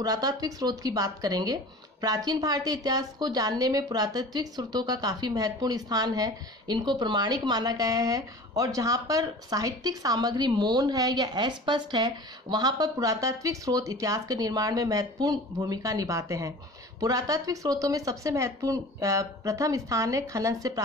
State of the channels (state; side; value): normal; both; correlation 0.40